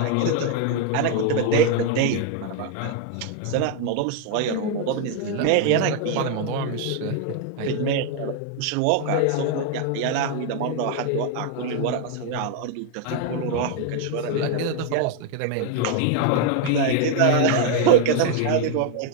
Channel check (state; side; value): different; both; correlation 0.00